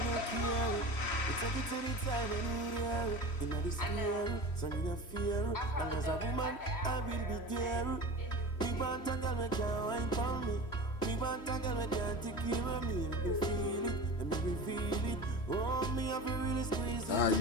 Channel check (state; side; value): late; right; 3.1 ms